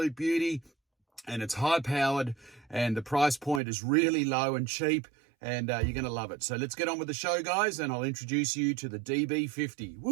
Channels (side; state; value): left; drops out; at 3.6 s